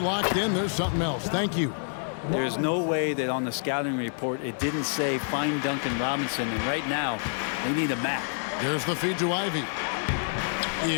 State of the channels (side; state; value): right; silent; digital silence